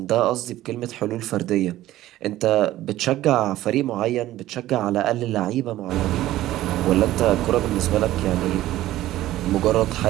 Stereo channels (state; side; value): quieter; left; 14.9 dB